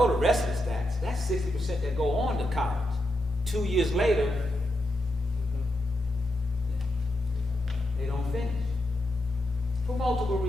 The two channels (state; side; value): normal; both; correlation 0.85